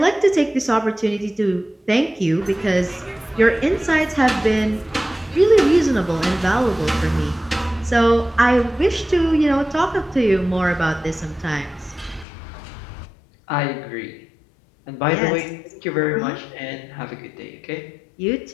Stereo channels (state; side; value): drops out; right; at 12.2 s